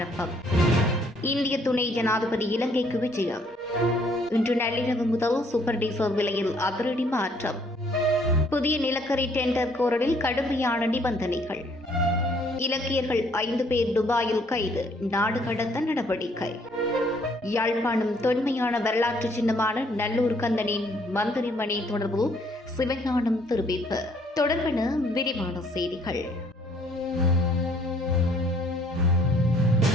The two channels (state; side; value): normal; both; correlation 0.64